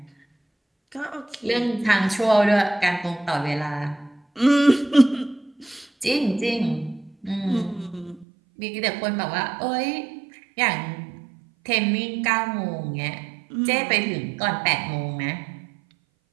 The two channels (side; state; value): left; drops out; at 8.2 s